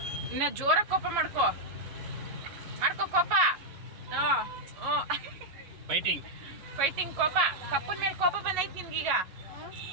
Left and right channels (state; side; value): late; left; 11 ms